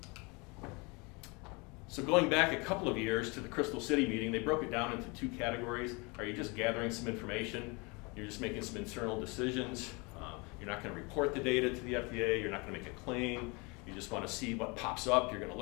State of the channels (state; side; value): quieter; right; 28.7 dB